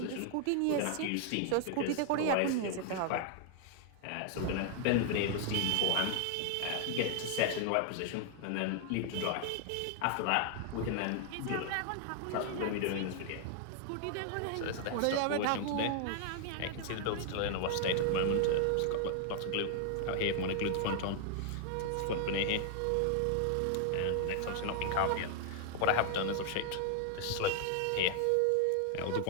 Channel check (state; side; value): different; both; correlation 0.00